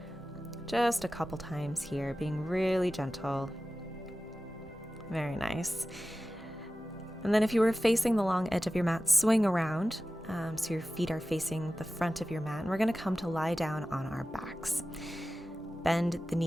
Just a couple times here, being really gentle. Very nice. And then if you were facing the long edge of your mat, swing around. So your feet are facing the front of your mat, and we're going to come to lie down on our backs. Bend the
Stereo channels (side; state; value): both; normal; correlation 0.95